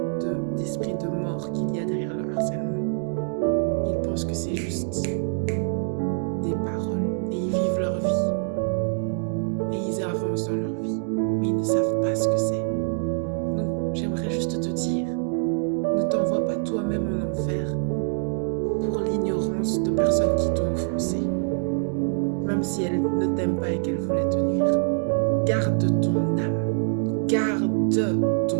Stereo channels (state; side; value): silent; left; 62 dB below the other